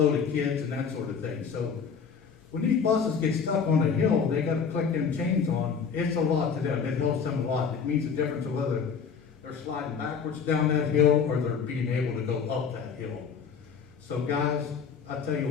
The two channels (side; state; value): right; quieter; 6.3 dB